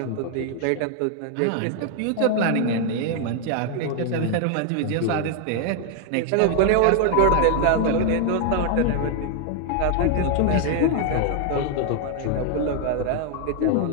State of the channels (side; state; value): both; different; correlation 0.00